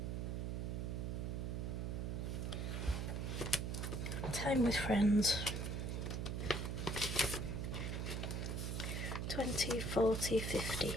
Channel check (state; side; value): noise; right; hum, 1 dB below the sound